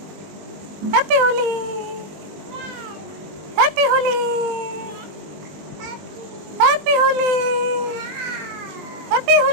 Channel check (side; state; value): left; late; 20 ms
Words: happy Holi, happy Holi, happy Holi, happy